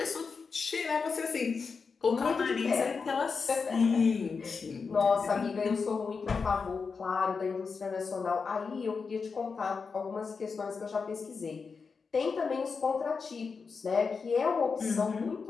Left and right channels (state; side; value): quieter; right; 5.1 dB